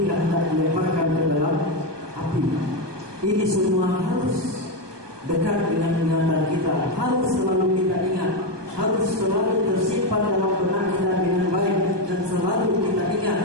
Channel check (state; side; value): late; left; 1.2 ms